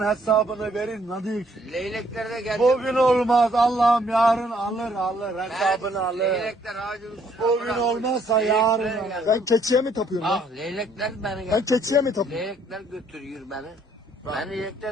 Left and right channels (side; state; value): both; normal; correlation 0.66